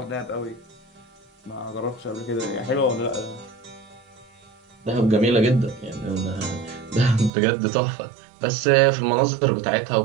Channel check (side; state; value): left; drops out; at 7.3 s